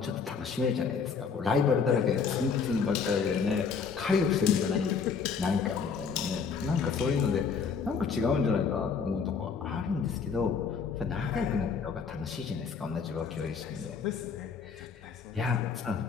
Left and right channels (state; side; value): quieter; right; 5.8 dB